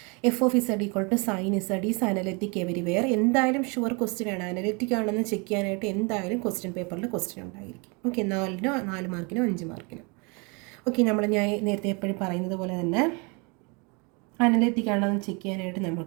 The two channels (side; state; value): left; quieter; 31.0 dB